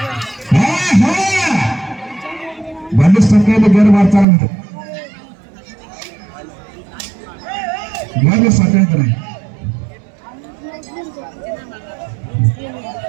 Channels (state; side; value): drops out; left; at 4.2 s